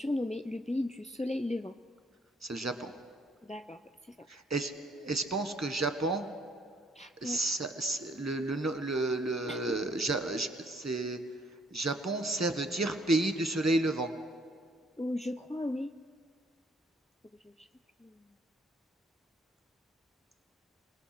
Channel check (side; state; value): both; normal; correlation 0.64